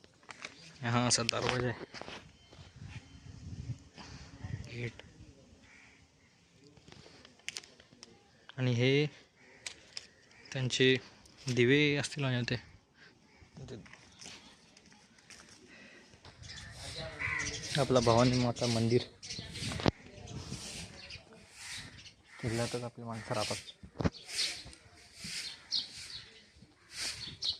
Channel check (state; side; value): identical; both; correlation 1.00